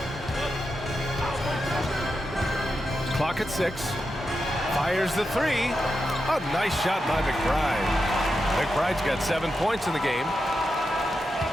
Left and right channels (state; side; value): normal; both; correlation 0.88